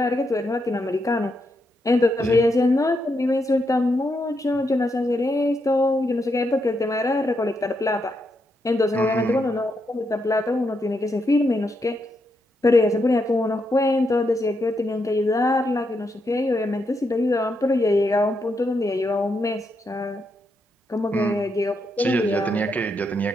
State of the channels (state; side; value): normal; both; correlation 0.81